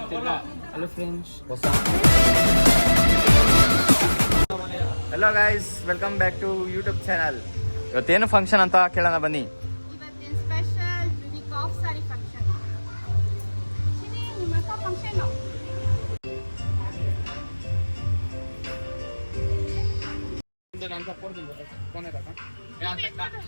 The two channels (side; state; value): both; inverted; correlation -1.00